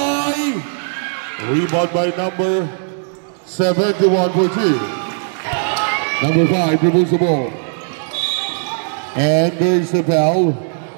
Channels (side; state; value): left; silent; digital silence